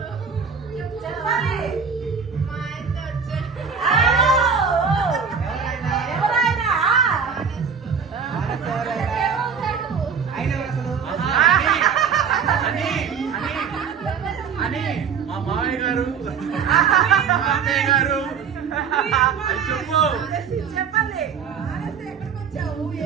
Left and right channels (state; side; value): quieter; left; 6.5 dB